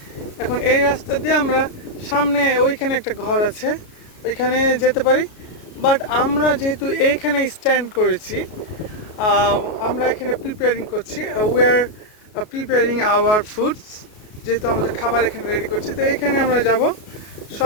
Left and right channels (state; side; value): late; right; 33 ms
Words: এখন এই রাস্তা দিয়ে আমরা সামনে, ওইখানে একটা ঘর আছে, ওইখানে যেতে পারি। বাট আমরা যেহেতু এইখানে স্ট্যান্ড করেছি, আমরা এখানে প্রিপেয়ারিং করছি, we are preparing our foods, যেহেতু আমাদের খাবার এখানে রেডি করছি। তো এইখানে আমরা যাব,